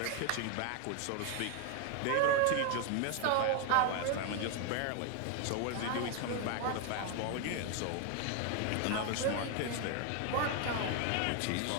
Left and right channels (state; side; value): different; both; correlation 0.01